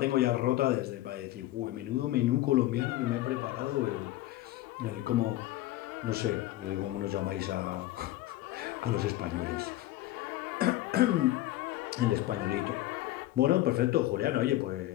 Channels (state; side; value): quieter; right; 15.7 dB